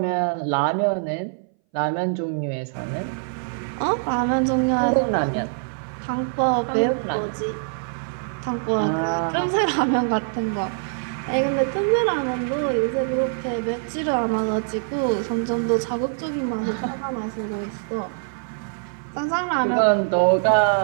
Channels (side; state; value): left; silent; 61 dB below the other